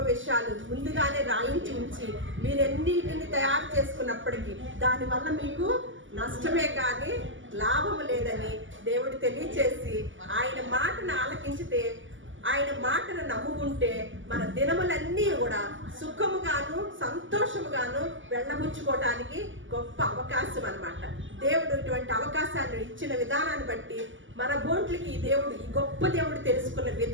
విషయాలు ముందుగానే రాయించి ఉంచి మీరెన్నిటిని తయారు చేసుకున్నప్పటికీ దానివల్ల మీకు నష్టమే కానీ లాభము లేదని దేవుడు తెలియచేసి, ఆయన మాటను ఆలకించితే, ఆయన మాటను నమ్ముకుంటే మన దినములన్నీ కూడా సుఖముగాను సంతోషముగాను వెళ్ళబుచ్చుకోవటానికి గొప్ప అవకాశం అన్నమాట. దేవుడు ఇటువంటి అవకాశాన్ని ఇచ్చిన విధానాన్ని బట్టి, మన బోట్లకి ఈ గొప్ప దేవుడు తెలుసుకున్న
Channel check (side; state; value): left; late; 0.56 ms